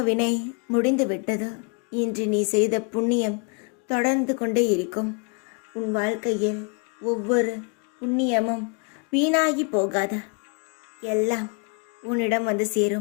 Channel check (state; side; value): quieter; right; 36.7 dB